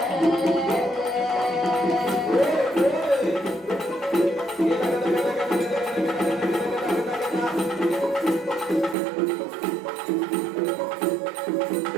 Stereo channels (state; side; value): drops out; left; at 9.0 s